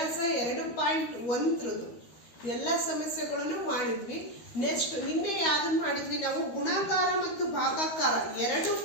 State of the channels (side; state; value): right; late; 13 ms